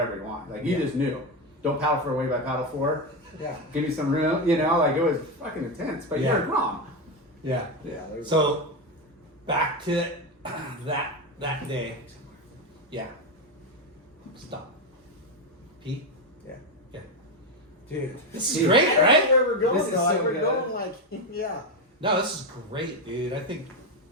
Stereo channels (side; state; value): both; normal; correlation 0.11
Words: he wanted. Like you just knew, don't paddle for a wave, I paddle for. Yeah. Give me some room, you know. Like it was fucking intense, but Yeah. you're a Grom. Yeah. Yeah. So back to that day. Yeah. Stop. Pete? Yeah. Yeah. Dude. This is great, right? Where we're going, This is dog. so We're good. going like yeah. No, this is great, dude. I think